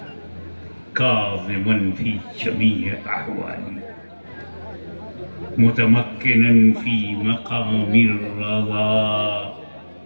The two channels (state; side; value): inverted; both; correlation -1.00